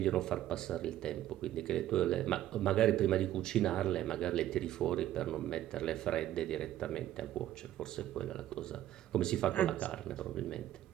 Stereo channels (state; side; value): quieter; left; 13.0 dB